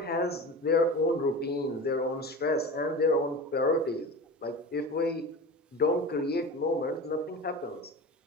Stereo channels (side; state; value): both; normal; correlation 0.31